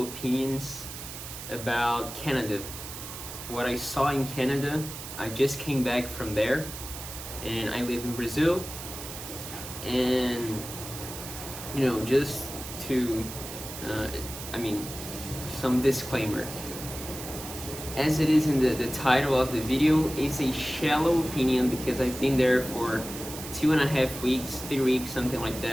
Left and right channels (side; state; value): right; noise; hiss, 10 dB below the sound